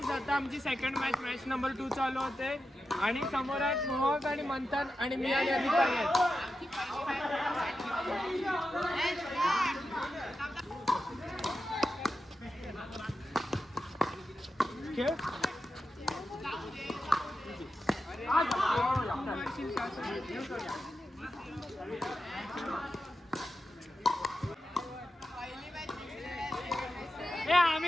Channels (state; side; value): normal; both; correlation 0.90